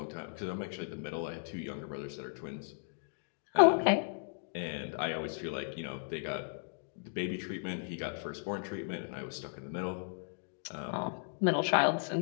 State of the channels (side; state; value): right; silent; digital silence